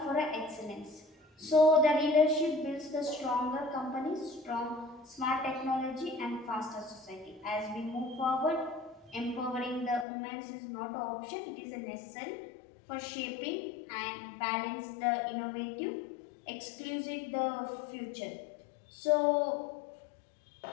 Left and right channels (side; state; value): right; drops out; at 10.1 s